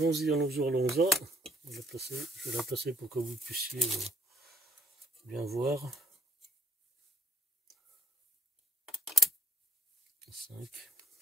allons-y. Je vais la placer pour que vous puissiez bien voir. 5.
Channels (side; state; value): both; normal; correlation 0.68